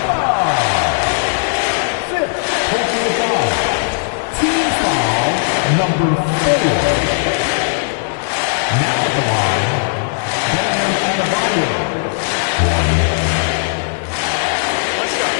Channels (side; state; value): right; silent; digital silence